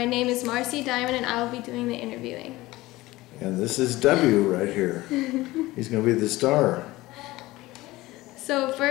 name is Marcy Diamond, and I will be doing the interviewing. And this is W right here. He's going to be the star. So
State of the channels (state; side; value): quieter; right; 18.8 dB